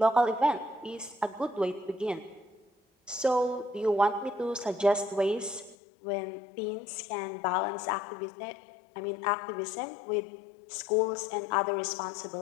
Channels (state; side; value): drops out; right; at 5.8 s